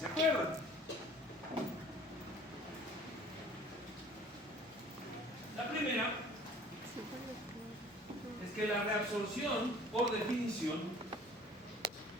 acuerdan. La primera es que la reabsorción por definición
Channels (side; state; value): both; normal; correlation 0.50